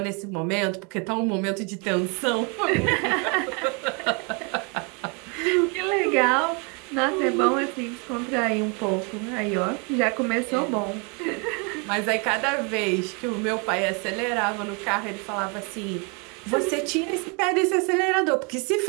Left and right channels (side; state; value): left; quieter; 33.6 dB